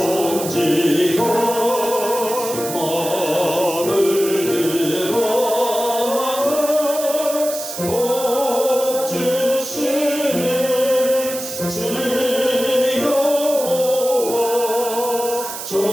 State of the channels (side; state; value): right; noise; hiss, 8 dB below the sound